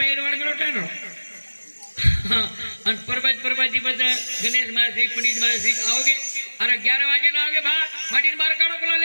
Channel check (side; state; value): both; inverted; correlation -1.00